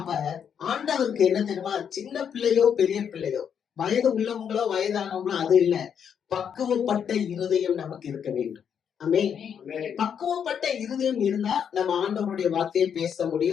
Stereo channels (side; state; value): right; quieter; 7.9 dB